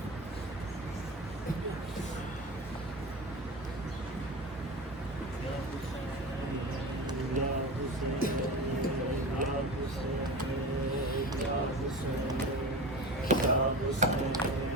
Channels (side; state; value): both; normal; correlation 0.29